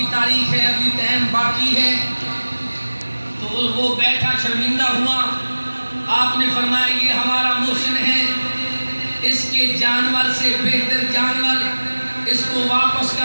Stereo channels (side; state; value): both; inverted; correlation -1.00